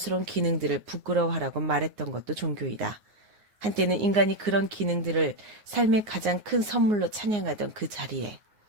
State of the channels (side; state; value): left; late; 9.6 ms